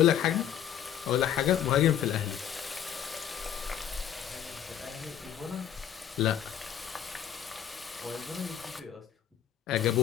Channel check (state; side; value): quieter; right; 9.7 dB